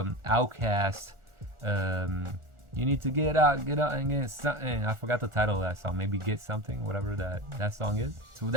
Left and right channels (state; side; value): late; left; 1.4 ms